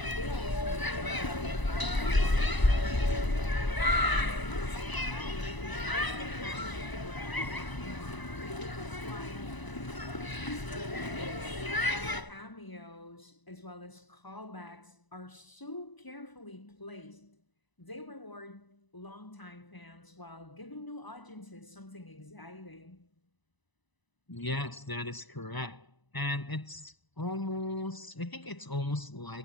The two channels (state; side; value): late; right; 1.0 ms